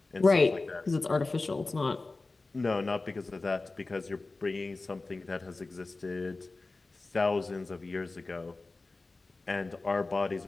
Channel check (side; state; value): right; quieter; 3.5 dB